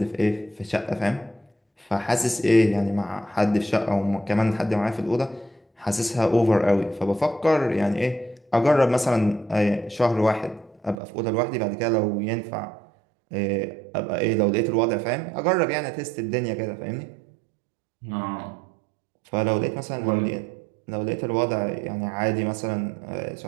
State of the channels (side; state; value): left; drops out; at 11.0 s